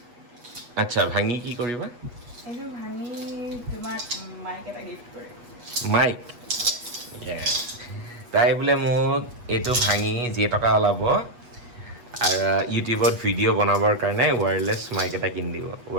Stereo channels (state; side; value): late; left; 8.2 ms